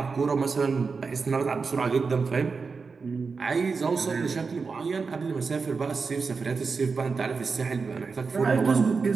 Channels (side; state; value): left; quieter; 4.8 dB